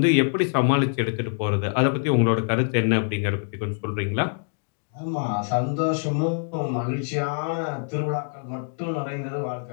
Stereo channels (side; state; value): right; silent; digital silence